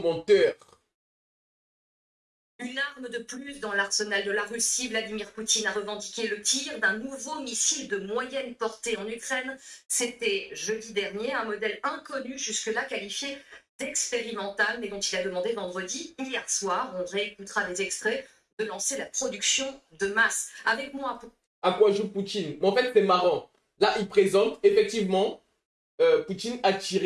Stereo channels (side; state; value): both; identical; correlation 1.00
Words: Une arme de plus dans l'arsenal de la Russie, Vladimir Poutine a revendiqué le tir d'un nouveau missile de moyenne portée en Ukraine. C'était jeudi dernier, un modèle inconnu jusque-là qualifié d'expérimental, mais dont il a demandé vendredi, hier soir, on réécoutera les extraits, de lancer la production de masse. Avec moi... À quoi joue Poutine? Mais en fait, c'est marrant. Là, il présente, effectivement, Poutine a